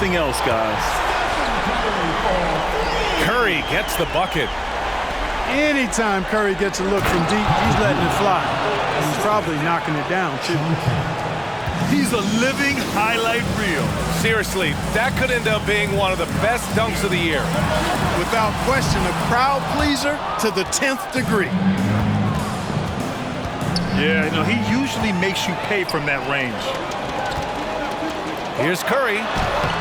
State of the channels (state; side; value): identical; both; correlation 1.00